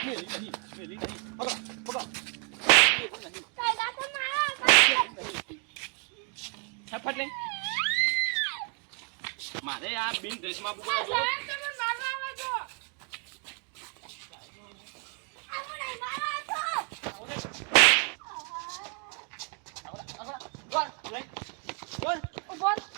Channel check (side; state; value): left; quieter; 38.7 dB